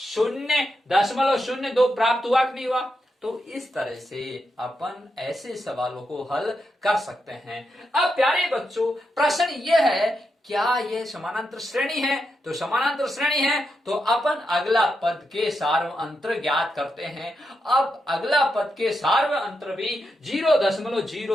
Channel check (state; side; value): normal; both; correlation 0.85